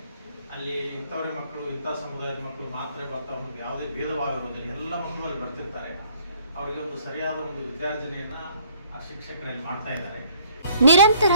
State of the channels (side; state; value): both; inverted; correlation -0.60